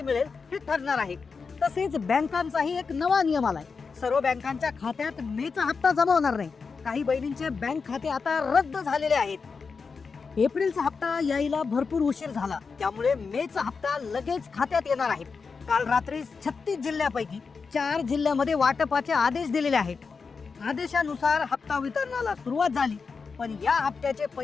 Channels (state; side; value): quieter; right; 5.0 dB